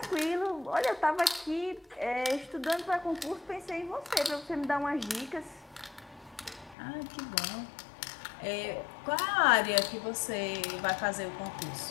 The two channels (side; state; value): right; drops out; at 6.8 s